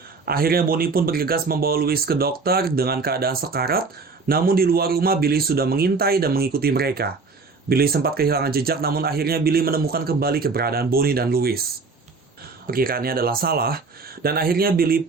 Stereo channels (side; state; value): left; quieter; 4.3 dB